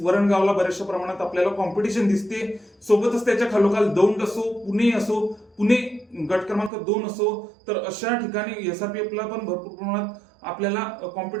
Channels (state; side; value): drops out; left; at 6.7 s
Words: बऱ्याचशा प्रमाणात आपल्याला कॉम्पिटिशन दिसते. सोबतच त्याच्या खालोखाल दौंड असो, पुणे गट क्रमांक 2 असो, तर अशा ठिकाणी SRPFला पण भरपूर प्रमाणात आपल्याला